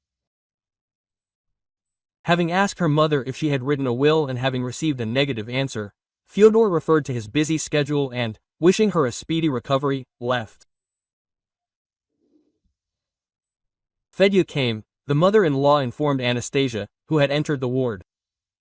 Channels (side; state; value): both; identical; correlation 1.00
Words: Having asked her mother if she had written a will and having received a negative answer, Fyodor referred to his busy schedule and, wishing her a speedy recovery, left. Fedya came. The mother-in-law informed Anastasia, who had entered the ward.